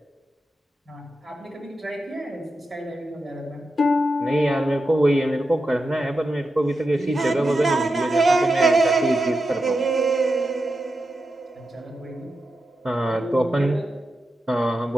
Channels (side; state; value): both; normal; correlation 0.89